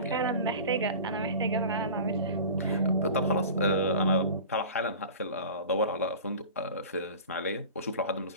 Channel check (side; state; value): both; inverted; correlation -0.37